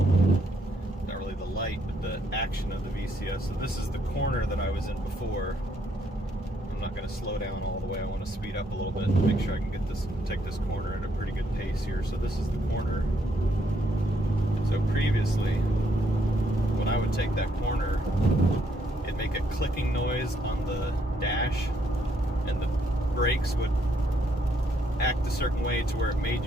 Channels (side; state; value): both; normal; correlation 0.72